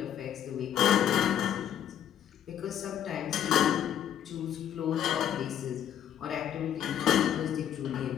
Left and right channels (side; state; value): right; quieter; 10.0 dB